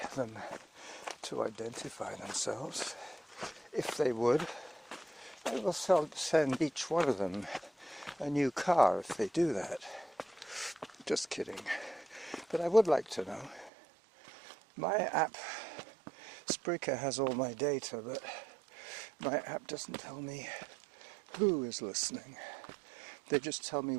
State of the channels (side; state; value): left; drops out; at 13.7 s